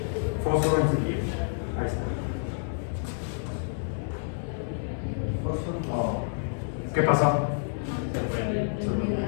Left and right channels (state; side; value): silent; right; digital silence